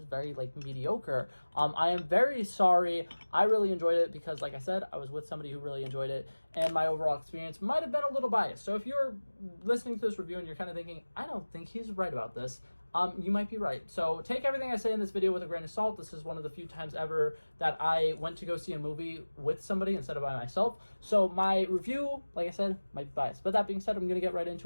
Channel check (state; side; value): inverted; both; correlation -1.00